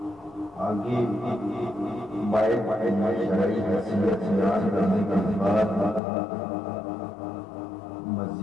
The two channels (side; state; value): right; drops out; at 6.0 s